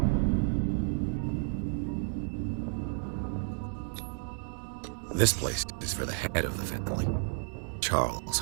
This place is for the head of the family, Charles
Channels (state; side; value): silent; left; 57 dB below the other